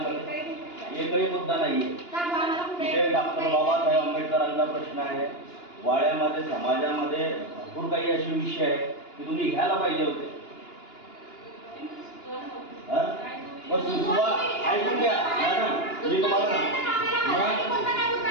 एकही मुद्दा नाहीये. तिथे डॉक्टर बाबासाहेब आंबेडकरांचा प्रश्न आहे. वाड्यामध्ये समाजामध्ये भरपूर काही असे विषय आहे की तुम्ही घ्यायला पाहिजे होते. सुचवा, ऐकून घ्या मॅडम, मी तुम्हाला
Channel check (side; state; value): right; late; 2.9 ms